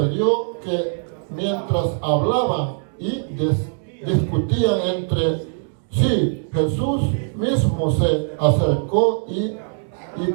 que mientras hablaban y discutían entre sí, Jesús mismo se acercó y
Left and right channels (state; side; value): silent; left; 62 dB below the other